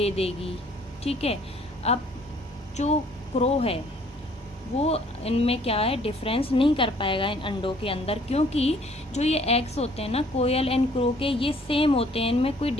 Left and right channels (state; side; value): normal; both; correlation 0.59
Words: देगी, ठीक है। अब जो क्रो है वो इनमें क्या है, डिफरेंस नहीं कर पाएगा इन अंडों के अंदर, क्योंकि जो ये एग्स होते हैं ना कोयल एंड क्रो के, ये सेम होते हैं, इनमें कोई